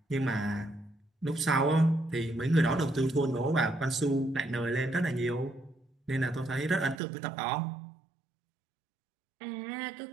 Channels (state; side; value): drops out; left; at 7.0 s